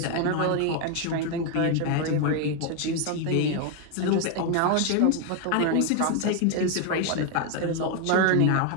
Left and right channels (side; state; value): both; different; correlation 0.01